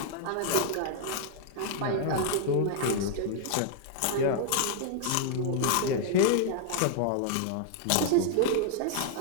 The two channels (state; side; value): different; both; correlation -0.01